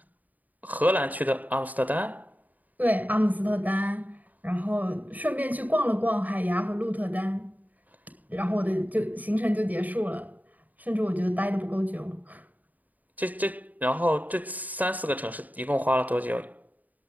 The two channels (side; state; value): left; late; 0.079 ms